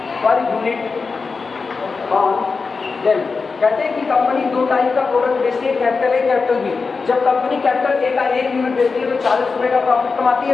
कहते हैं कि कंपनी 2 टाइप का प्रोडक्ट बेचती है, कैपिटल ए कैपिटल बी। जब कंपनी कैपिटल ए का 1 यूनिट बेचती है तो ₹40 का प्रॉफिट कमाती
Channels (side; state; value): right; quieter; 4.6 dB